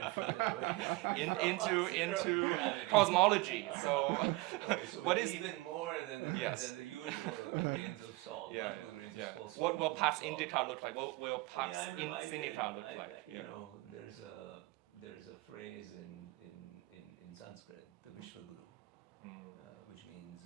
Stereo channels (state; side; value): quieter; left; 22.1 dB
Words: further away into cosmology. So, so what is even more than the usual grains of salt, multiple grains of salt. What will past Indica look like? What will past Indica look like? You know, there's a phrase in Sanskrit, the Vishwaguru, which